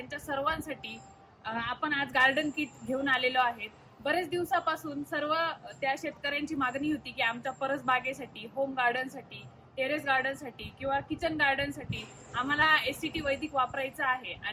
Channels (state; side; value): identical; both; correlation 1.00